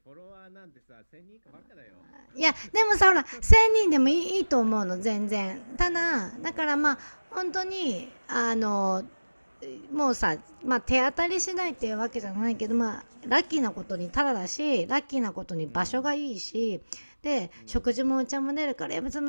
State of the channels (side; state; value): both; inverted; correlation -1.00